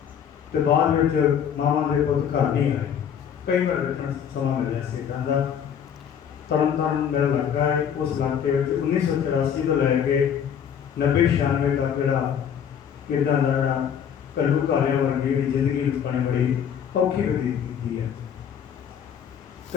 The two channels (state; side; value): quieter; right; 8.3 dB